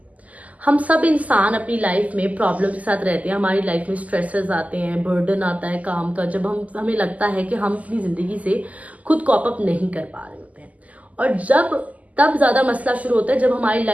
हम सब इंसान अपनी लाइफ में प्रॉब्लम के साथ रहते हैं। हमारी लाइफ में स्ट्रेसेस आते हैं, बर्डन आता है काम का, जब हमें लगता है कि हम अपनी जिंदगी से खुद कॉप अप नहीं कर पा रहे होते हैं। और तब ज्यादा मसला शुरू होता है जब हमारी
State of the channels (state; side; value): late; left; 0.074 ms